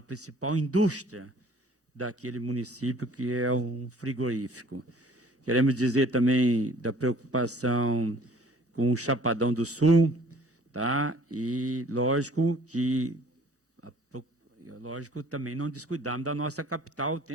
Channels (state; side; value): normal; both; correlation 0.53